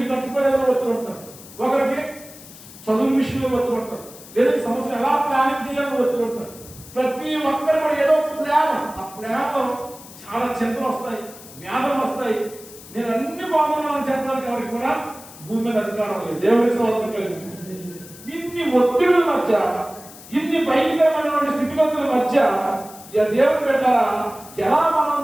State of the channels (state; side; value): noise; left; hiss, 18 dB below the sound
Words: కట్టుకోలేదని ఒత్తులు ఉంటారు, ఒకరికి చదువు విషయంలో ఒత్తులు ఉంటారు, లేదంటే సంవత్సరం ఎలా ప్లానింగ్ చేయాలని ఒత్తులు ఉంటారు. ప్రతి ఒక్కరు కూడా ఏదో ప్లాన్, ఆ ప్లాన్లో చాలా చింతలు వస్తాయి, వ్యాధులు వస్తాయి. నేను అన్ని బాగున్నానని చెప్పడానికి ఎవరికి కూడా భూమి మీద అధికారం లేదు. దేవుడి స్తోత్రం కలిగింది. ఇన్ని ఒత్తిడుల మధ్య, ఇన్ని భయంకరమైనటువంటి స్థితిగతుల మధ్య దేవుడు పెట్టారా ఎలా మనం